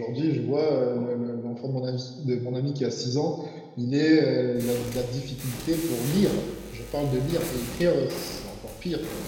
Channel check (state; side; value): identical; both; correlation 1.00